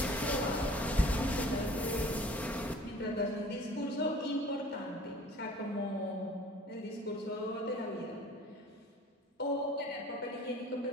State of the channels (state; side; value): normal; both; correlation 0.48